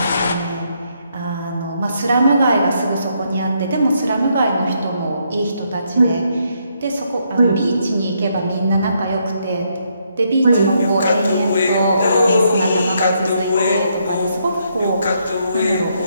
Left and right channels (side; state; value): both; inverted; correlation -0.75